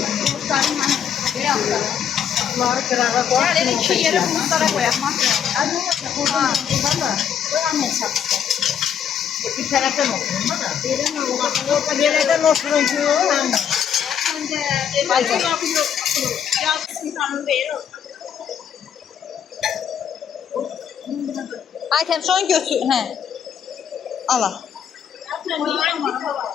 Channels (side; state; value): right; quieter; 8.4 dB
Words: Gel iki yere bulutlara koyalım. Bir taraftan oturun da. Nereden oturun ki? Aytem şu an götür. Hə. Ala.